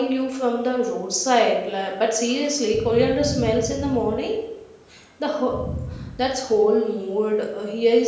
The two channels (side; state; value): both; identical; correlation 1.00